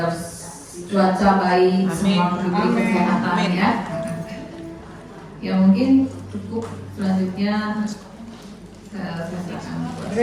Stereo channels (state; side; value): identical; both; correlation 1.00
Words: cuaca baik, semua diberi kesehatan ya. Ya mungkin cukup, selanjutnya saya serahkan.